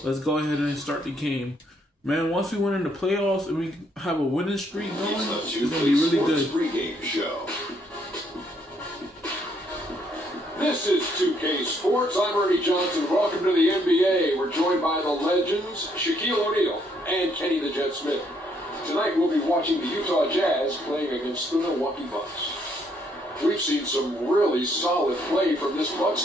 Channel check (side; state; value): both; normal; correlation 0.70